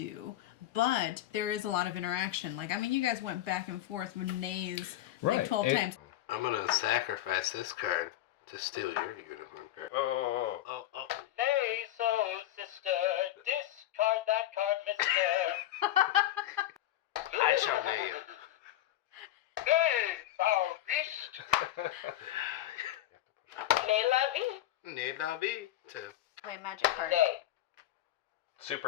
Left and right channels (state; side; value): quieter; right; 13.7 dB